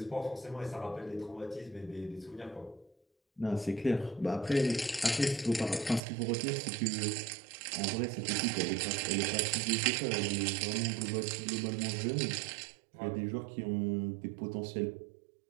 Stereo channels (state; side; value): drops out; left; at 6.0 s